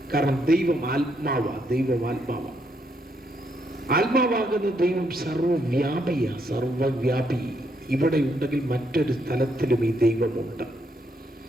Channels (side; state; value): both; normal; correlation 0.75